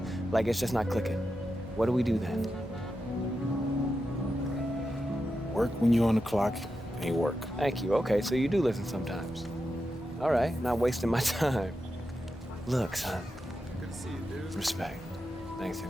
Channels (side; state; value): both; normal; correlation 0.89